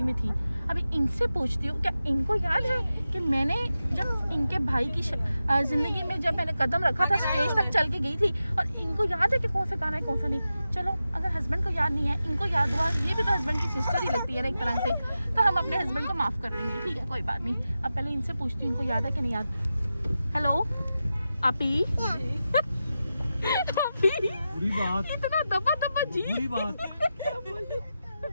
में थी। अभी इनसे पूछती हूँ, क्या इनको याद है कि मैंने जब इनके भाई की ज़िंदगी में जब मैंने कदम रखा था, स्टेज तक चल के गई थी, और इनको याद है कि कौन सा गाना है, कौन सा नहीं? चलो, अगर हस्बैंड को याद नहीं है, इनको याद हुआ, ये भी तो हस्बैंड की सिस्टर ही लगती है ना एक तरह से, तो हम अपने हस्बैंड को माफ़ कर देंगे, ठीक है? कोई बात नहीं। अब पहले इनसे पूछती हूँ इनको याद है कि नहीं याद। हेलो आपी। बुरी बात, इतना दबा जी। बुरी बात।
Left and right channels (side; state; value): both; inverted; correlation -0.91